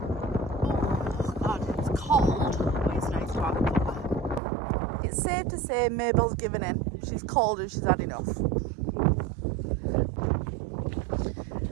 Cold, but it's nice to have a cuppa. It's safe to say Mabel's given in. She's cold and she's had enough.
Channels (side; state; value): left; drops out; at 4.4 s